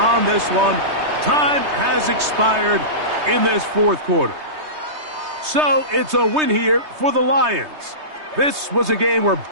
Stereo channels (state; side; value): late; left; 3.2 ms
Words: this one. Time has expired in this 4th quarter. So it's a win here for the Lions. This was a game where